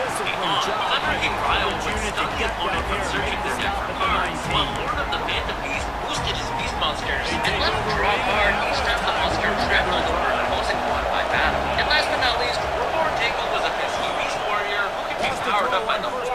beyond. Leveraging Ryle would stun the opponent from searching their deck for cards, while Lord of the Phantom Beast boosted his beast monsters and let him draw a card each time the monster trampled over an opposing one by battle. And last but not least, Reborn Tangle was a pesky beast warrior who could be powered up by the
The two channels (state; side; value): identical; both; correlation 1.00